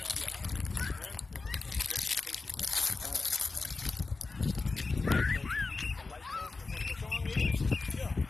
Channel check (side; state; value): right; quieter; 3.9 dB